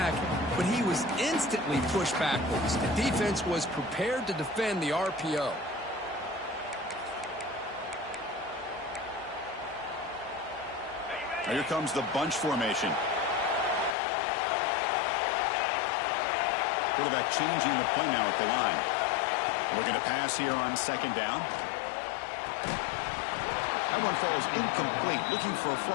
but he was instantly pushed backwards. The defense was prepared to defend the RPO. Now here comes the bunch formation. Quarterback changing the play now at the line. Looking to pass here on 2nd down. That one falls incomplete. Looking for a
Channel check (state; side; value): drops out; right; at 14.0 s